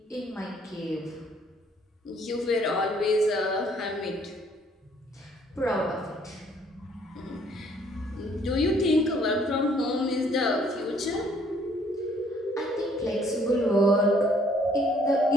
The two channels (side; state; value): both; normal; correlation 0.63